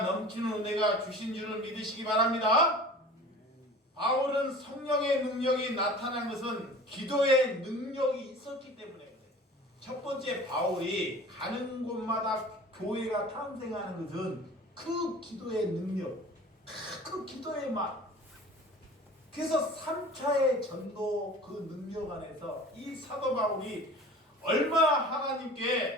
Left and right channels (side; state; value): both; normal; correlation 0.42